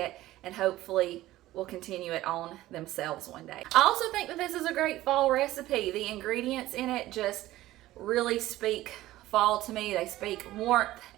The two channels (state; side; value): quieter; left; 15.9 dB